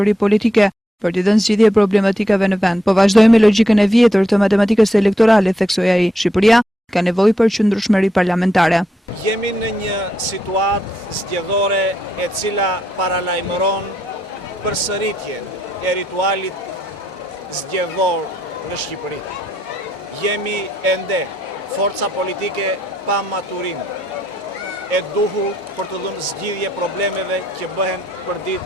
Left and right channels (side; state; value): both; normal; correlation 0.79